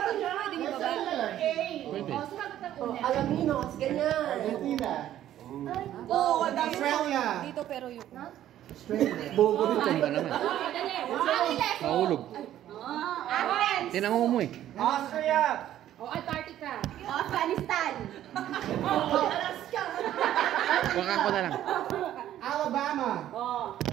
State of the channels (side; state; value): left; quieter; 12.2 dB